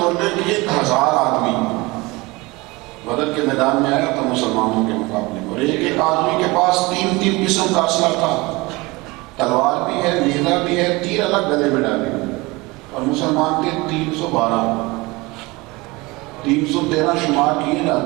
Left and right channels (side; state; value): left; quieter; 23.3 dB